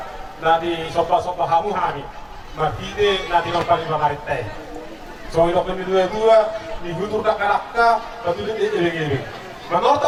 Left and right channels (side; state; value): both; identical; correlation 1.00